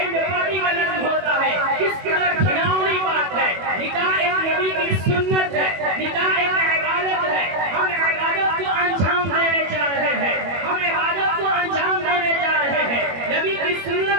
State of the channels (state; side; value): late; left; 21 ms